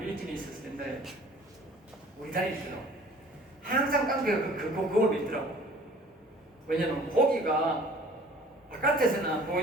일진이 있었을 텐데, 우리 다닐 때도 항상 깡패가 그걸 믿더라고. 왜냐면 고기가 바깥에서는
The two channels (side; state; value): both; normal; correlation 0.49